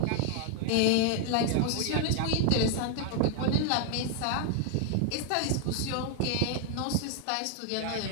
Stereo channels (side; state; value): both; different; correlation 0.00